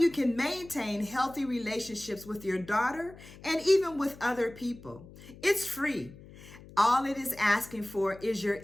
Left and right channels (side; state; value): left; noise; hum, 19 dB below the sound